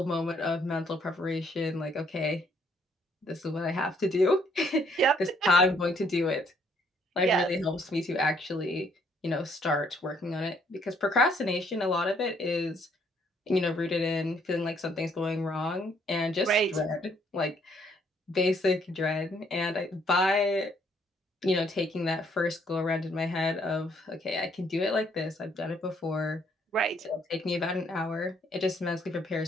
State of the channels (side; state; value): both; normal; correlation 0.67